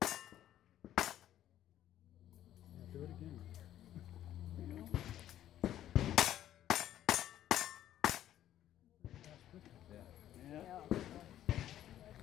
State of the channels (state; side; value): quieter; right; 12.0 dB